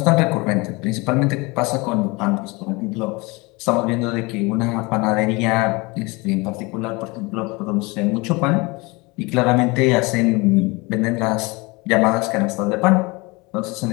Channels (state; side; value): quieter; right; 25.5 dB